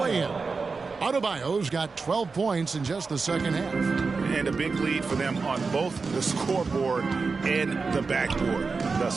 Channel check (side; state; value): left; quieter; 4.5 dB